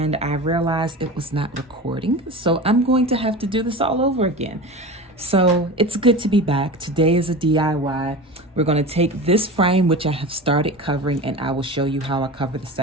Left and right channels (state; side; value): normal; both; correlation 0.30